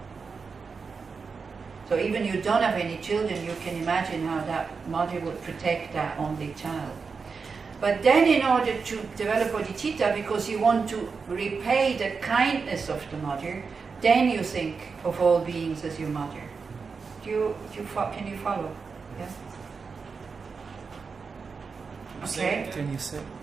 So even you don't have any children, you can imagine how that mother would protect that only child. But then in order to develop bodhicitta, because you want to repay the kindness of the mother, then you think of all beings as your mother. Can you follow? Yeah? Okay. Can you say?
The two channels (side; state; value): left; quieter; 5.1 dB